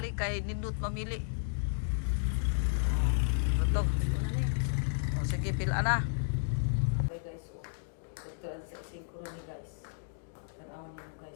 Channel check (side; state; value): right; silent; digital silence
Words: kay nindot mamili. Betul. Oh, sige pila na. Sa ising ko ni guys. Tanawan niyo